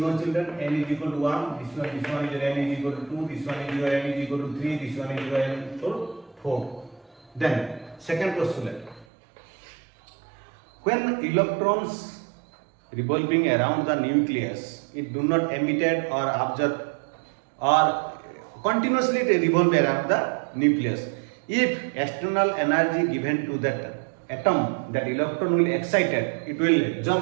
children, n is equal to 1, this one is your n is equal to 2, this one is your n is equal to 3, this one is your n is equal to 4. Then second postulate, when electrons revolving around the nucleus, it do not emitted or absorbed or continuously revolve around the nucleus. If external energy given to that atom, that electron will excited, it will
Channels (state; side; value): drops out; left; at 9.1 s